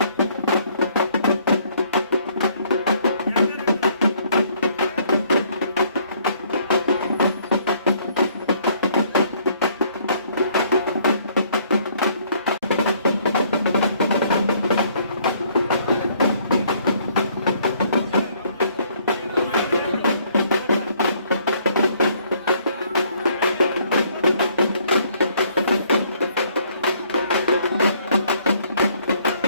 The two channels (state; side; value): inverted; both; correlation -0.64